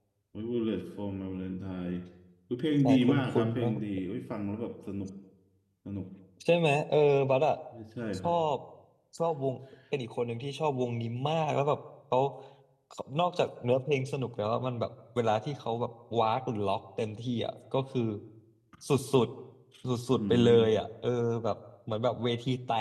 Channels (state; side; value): identical; both; correlation 1.00